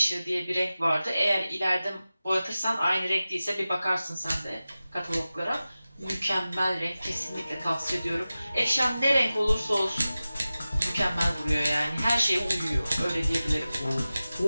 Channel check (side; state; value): both; inverted; correlation -0.96